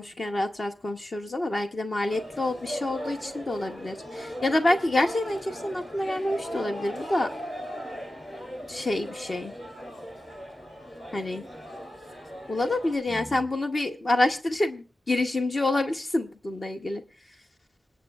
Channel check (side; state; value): both; normal; correlation 0.93